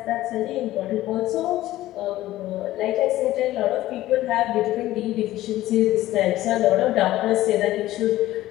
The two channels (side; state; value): right; quieter; 15.4 dB